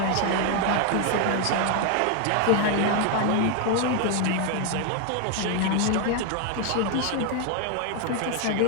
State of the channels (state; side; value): different; both; correlation 0.01